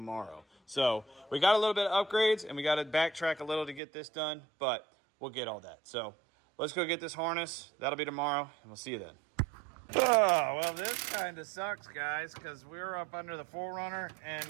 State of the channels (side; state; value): left; drops out; at 3.8 s